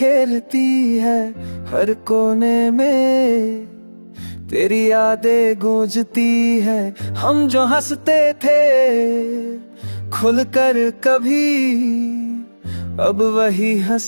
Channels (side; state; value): both; inverted; correlation -1.00